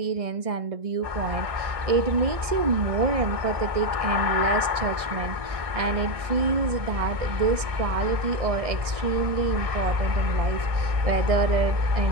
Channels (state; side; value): late; left; 1.6 ms